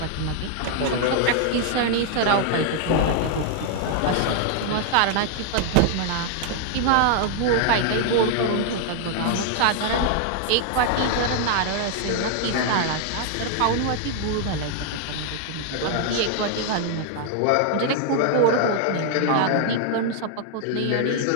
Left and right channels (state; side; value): different; both; correlation 0.00